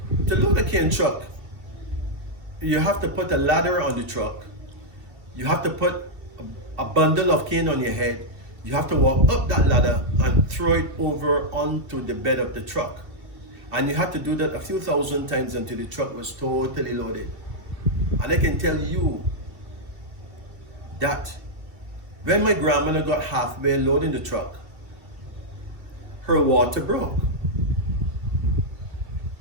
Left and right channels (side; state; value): left; late; 2.7 ms